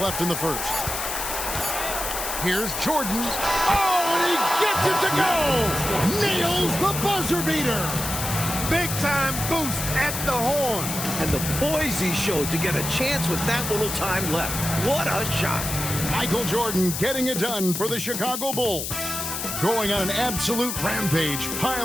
in the first. Here's Jordan. Oh, and he gets it to go! Nails the buzzer beater! Big time boost at the horn. And the poise he showed to get a chance with that little time left. What a shot. Michael Jordan getting it done for the Chicago Bulls. going on an absolute rampage,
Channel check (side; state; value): left; noise; hiss, 4 dB below the sound